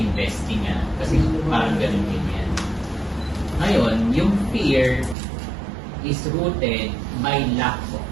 kasi parang ganun din yan. Ngayon, yung fear is rooted by lack of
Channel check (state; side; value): drops out; left; at 5.2 s